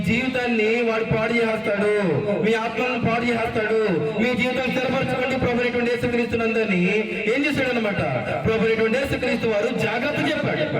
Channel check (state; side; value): identical; both; correlation 1.00